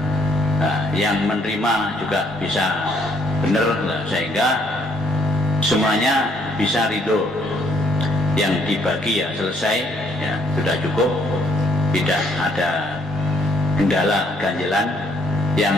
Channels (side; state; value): both; normal; correlation 0.67